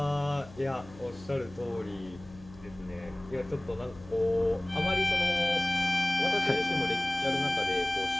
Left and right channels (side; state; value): left; noise; hum, 20 dB below the sound